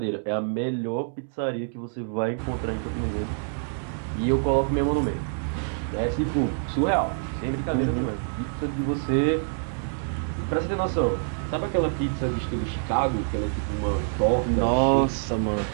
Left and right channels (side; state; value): left; silent; digital silence